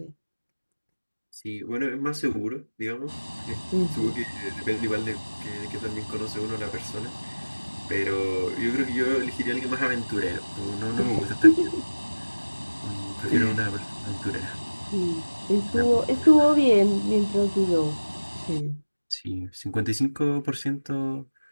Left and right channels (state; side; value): inverted; both; correlation -1.00